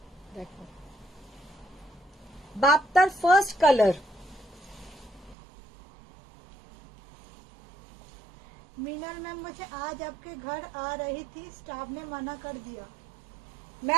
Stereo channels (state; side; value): drops out; left; at 5.4 s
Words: দেখো বাপ্তার ফার্স্ট কালার। मीनल मैम, मुझे आज आपके घर आ रही थी, स्टाफ ने मना कर दिया।